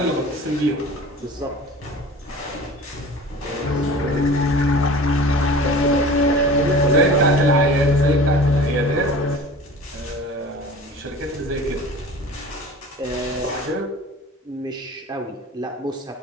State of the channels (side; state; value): both; normal; correlation 0.40